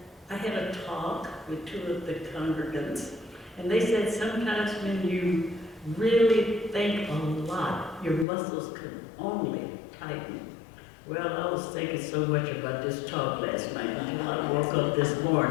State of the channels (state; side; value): drops out; right; at 8.2 s